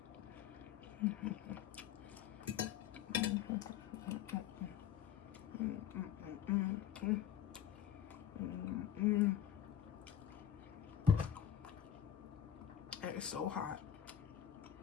That is so hot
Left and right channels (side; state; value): right; quieter; 9.7 dB